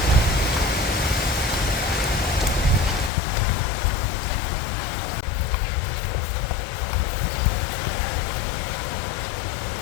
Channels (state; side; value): drops out; right; at 3.1 s